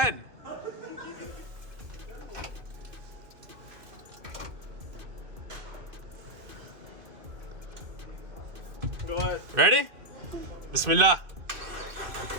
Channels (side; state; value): left; late; 2.5 ms